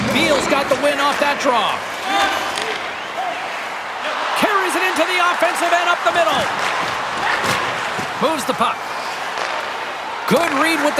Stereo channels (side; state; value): both; identical; correlation 1.00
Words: Biel's got the win off that draw. Carries it into the offensive end up the middle. Moves the puck. Good read with